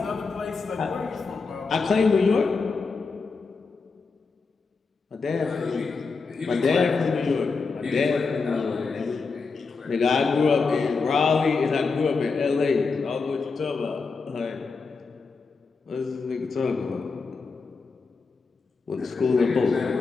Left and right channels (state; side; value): quieter; right; 4.6 dB